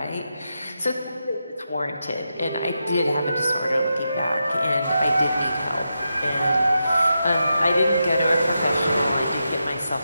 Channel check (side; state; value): both; inverted; correlation -0.87